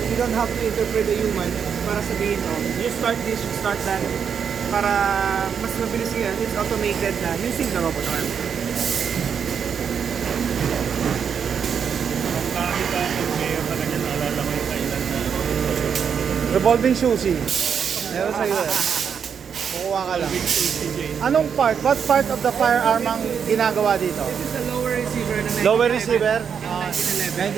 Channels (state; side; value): quieter; left; 7.2 dB